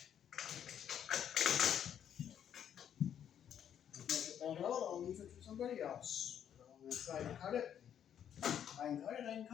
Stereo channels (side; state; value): right; quieter; 9.3 dB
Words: If I get that out, I'll leave it for somebody else. I'm going to try to cut it. If I can cut it, I can